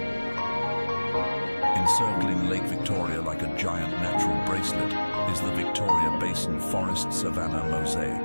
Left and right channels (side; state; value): both; inverted; correlation -1.00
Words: Encircling Lake Victoria like a giant natural bracelet is the Victoria Basin Forest Savanna